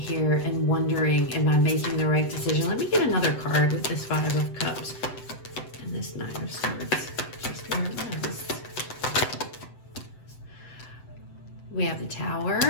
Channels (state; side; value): late; right; 7.9 ms